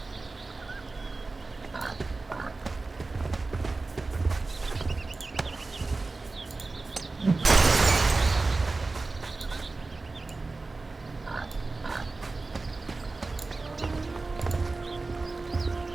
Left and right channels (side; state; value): left; quieter; 3.5 dB